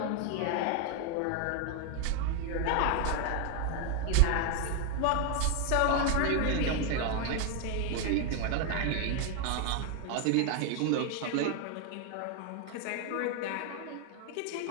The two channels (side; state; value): both; different; correlation 0.01